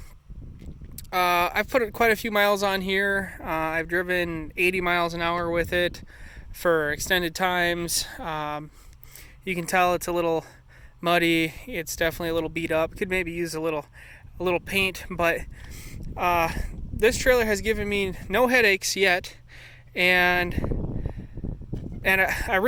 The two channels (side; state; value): both; identical; correlation 1.00